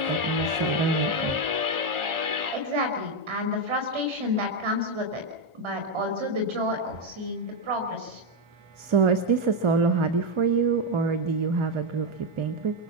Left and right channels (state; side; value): late; left; 1.4 ms